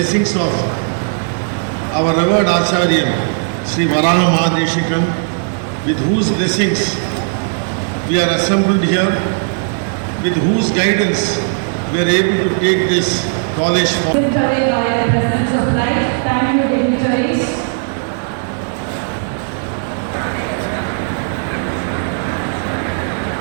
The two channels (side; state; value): left; silent; digital silence